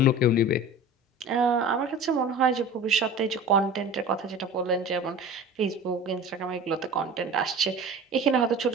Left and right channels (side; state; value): both; normal; correlation 0.37